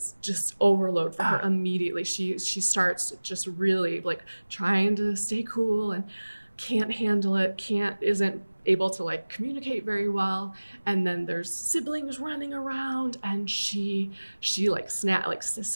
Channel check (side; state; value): both; inverted; correlation -1.00